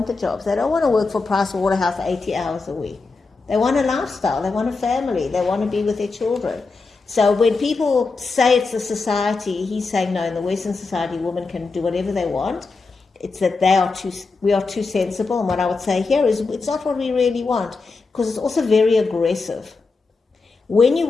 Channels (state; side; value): quieter; right; 4.1 dB